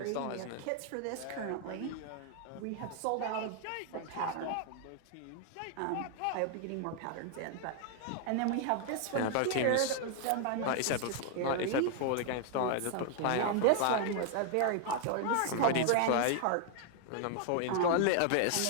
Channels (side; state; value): both; different; correlation 0.00